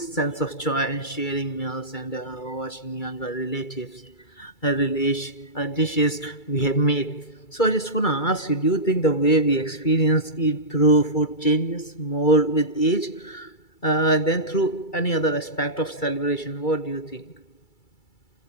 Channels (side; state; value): right; late; 2.3 ms